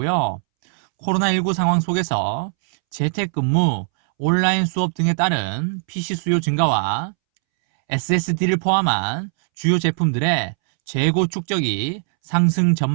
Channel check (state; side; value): silent; left; 65 dB below the other